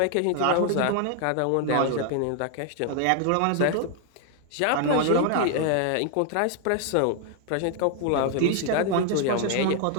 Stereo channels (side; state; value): both; different; correlation 0.00